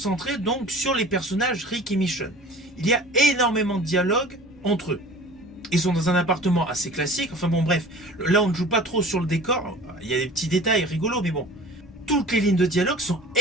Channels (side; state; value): both; normal; correlation 0.43